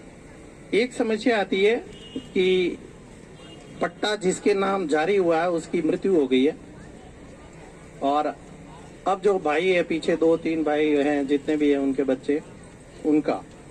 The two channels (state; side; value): identical; both; correlation 1.00